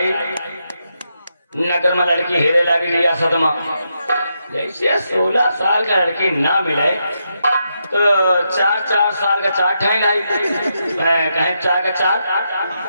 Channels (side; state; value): both; inverted; correlation -0.82